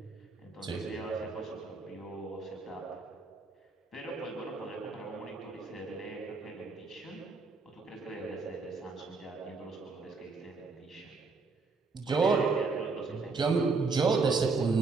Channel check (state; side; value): quieter; left; 4.2 dB